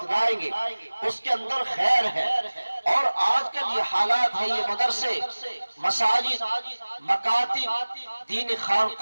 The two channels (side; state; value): both; inverted; correlation -1.00